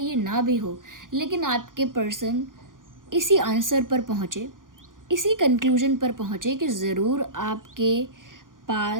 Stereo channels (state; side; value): late; left; 0.89 ms